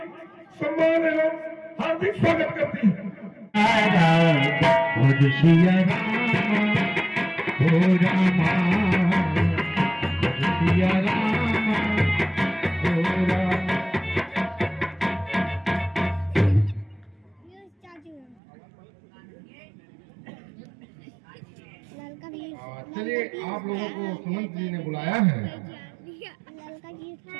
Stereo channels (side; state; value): left; drops out; at 18.4 s